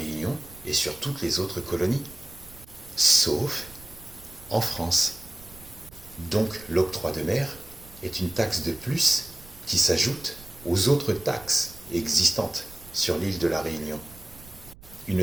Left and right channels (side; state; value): right; noise; rumble, 20 dB below the sound